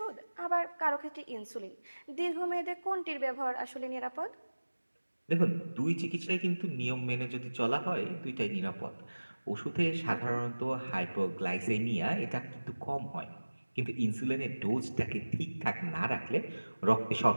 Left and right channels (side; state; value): both; inverted; correlation -1.00